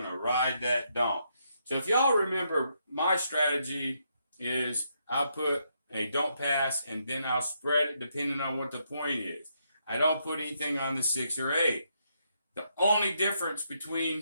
to ride that don't. So if y'all remember, my strategy is I'll put a don't pass, and then I'll spread it depending on what the point is. I don't put anything on the 6 or 8. The only difference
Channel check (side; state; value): both; inverted; correlation -0.78